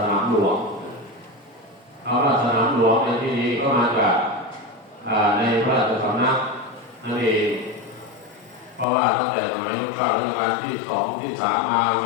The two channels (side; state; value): right; drops out; at 8.8 s